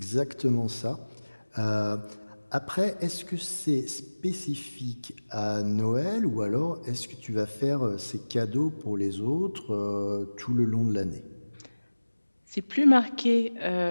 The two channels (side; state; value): both; inverted; correlation -1.00